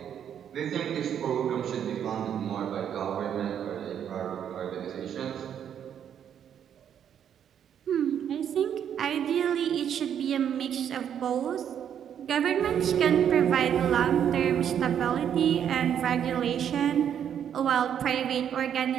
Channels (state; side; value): quieter; left; 9.0 dB